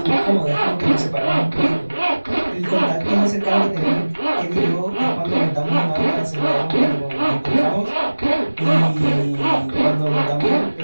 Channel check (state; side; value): inverted; both; correlation -1.00